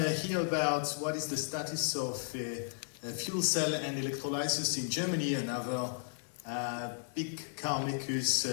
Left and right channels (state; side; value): silent; right; digital silence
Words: hear about what is the status of fuel cell and electrolyzers in Germany, another big car makers.